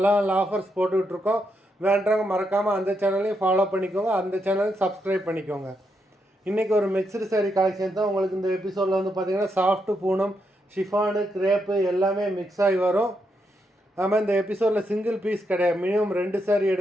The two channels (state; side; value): normal; both; correlation 0.81